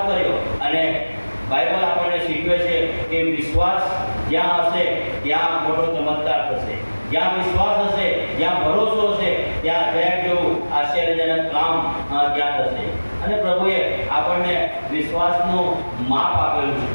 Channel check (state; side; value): inverted; both; correlation -1.00